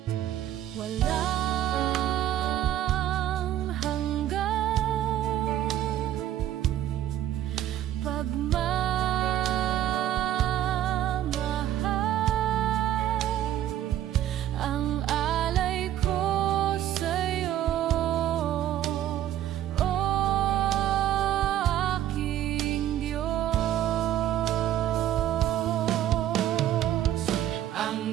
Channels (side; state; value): left; quieter; 12.0 dB